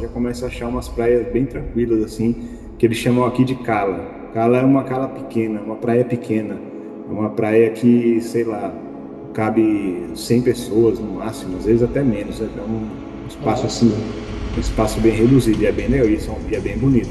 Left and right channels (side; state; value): both; identical; correlation 1.00